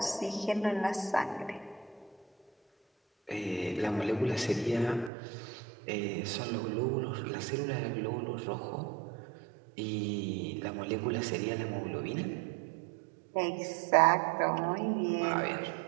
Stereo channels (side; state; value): left; drops out; at 5.1 s